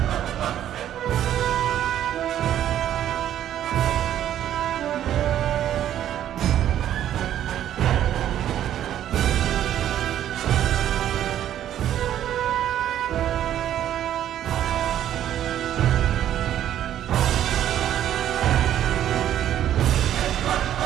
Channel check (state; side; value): quieter; left; 11.2 dB